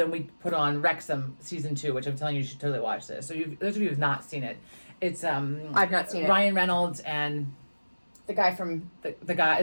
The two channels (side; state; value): both; inverted; correlation -1.00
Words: we put on Wrexham season 2, which I'm telling you should totally watch this. So those of you who've not seen it, it's I've not seen it. Ryan Reynolds and The guy from the guy,